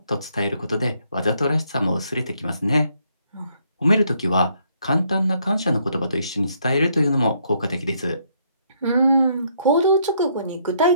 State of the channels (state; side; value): inverted; both; correlation -0.70